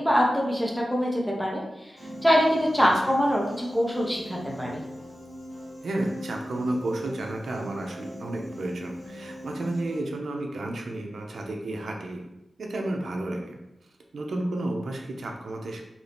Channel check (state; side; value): normal; both; correlation 0.94